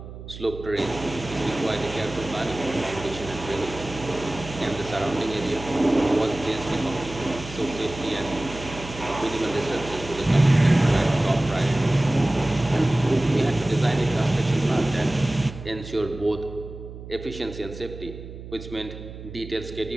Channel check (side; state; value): right; noise; hum, 13 dB below the sound